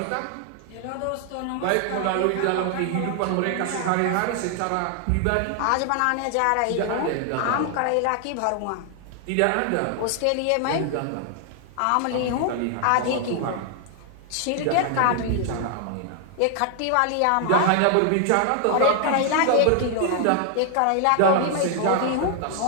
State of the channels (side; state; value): both; different; correlation 0.00